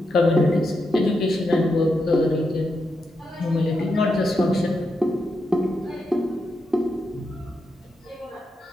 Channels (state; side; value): normal; both; correlation 0.85